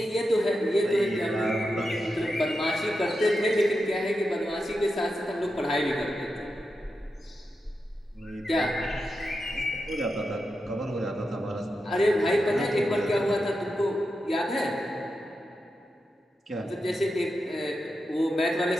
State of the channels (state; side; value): normal; both; correlation 0.88